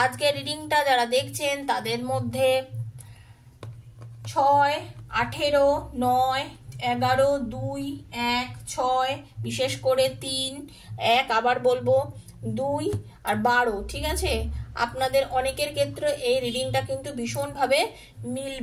আজকে রিডিংটা যারা দেখছেন তাদের মধ্যে 6, 18, 9, 11, 2, 1, 6, বিশেষ করে 3, 1, আবার বলবো 2 আর 12, ঠিক আছে? আপনাদের অনেকের ক্ষেত্রে এই রিডিংটা কিন্তু ভীষণভাবে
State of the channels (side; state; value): both; identical; correlation 1.00